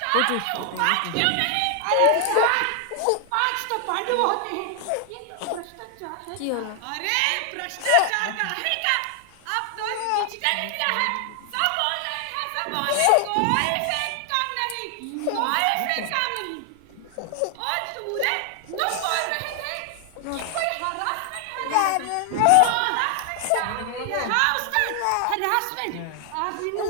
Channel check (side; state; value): both; different; correlation 0.00